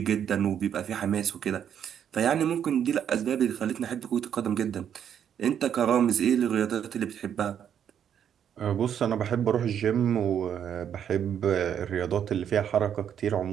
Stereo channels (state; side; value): quieter; left; 8.9 dB